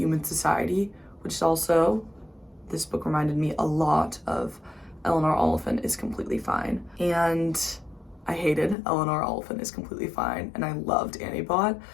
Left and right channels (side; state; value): right; drops out; at 8.8 s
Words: society, which is also, this book reminded me a lot of Eleanor Oliphant is Completely Fine. And I hated Eleanor Oliphant is Completely Fine, and I loved Annie Bot,